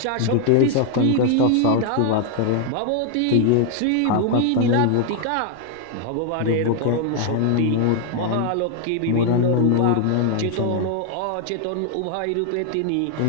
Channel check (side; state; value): both; different; correlation 0.00